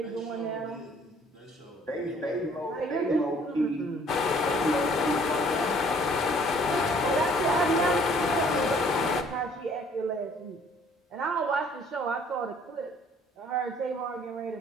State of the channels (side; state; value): both; normal; correlation 0.58